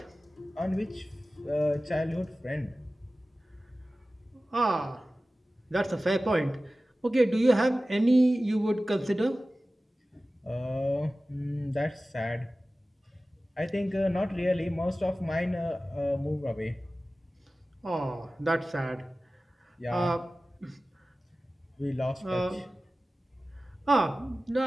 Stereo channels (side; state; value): both; normal; correlation 0.96